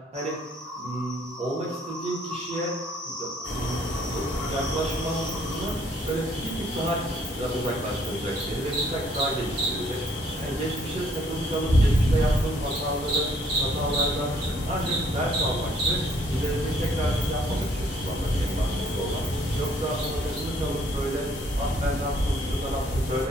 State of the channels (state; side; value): normal; both; correlation 0.63